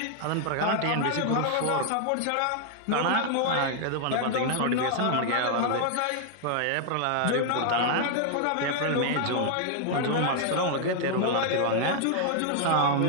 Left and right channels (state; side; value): different; both; correlation 0.00